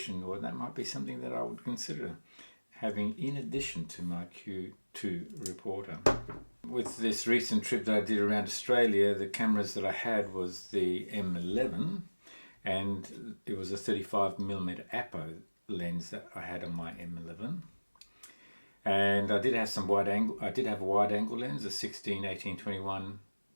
well, that might be something that I would consider having in addition to my Q2 reporter. With this recent trip that I did around Australia, the cameras that I had was the M11, and it was a 35mm Apo lens that I had on my M11. And I did have some wide angle. I did have a wide angle lens, a 16-18-21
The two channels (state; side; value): inverted; both; correlation -1.00